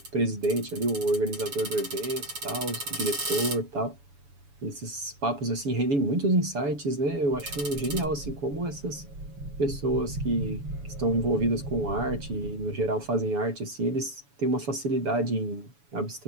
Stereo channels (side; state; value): left; late; 7.1 ms